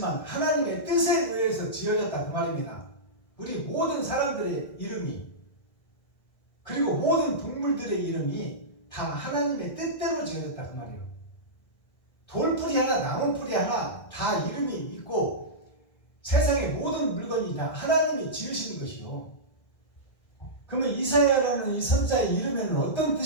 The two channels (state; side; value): late; right; 1.6 ms